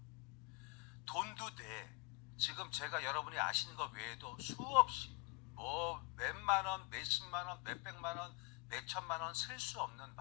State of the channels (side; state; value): right; quieter; 28.9 dB